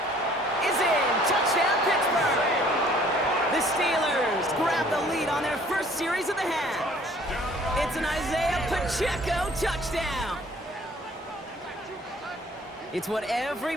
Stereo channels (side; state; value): both; normal; correlation 0.56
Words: is in. Touchdown, Pittsburgh. The Steelers grab the lead on their first series of the half. It's an Isaiah Pacheco touchdown. It's what